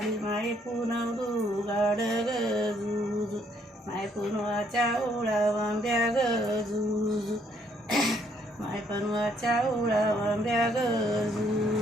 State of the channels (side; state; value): both; normal; correlation 0.69